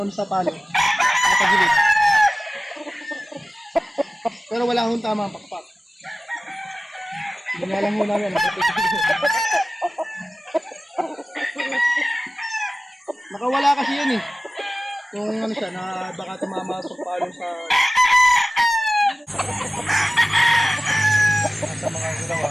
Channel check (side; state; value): both; normal; correlation 0.96